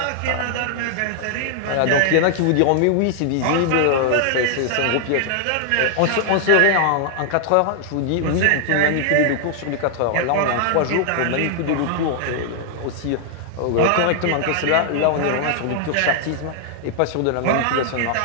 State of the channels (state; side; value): different; both; correlation 0.00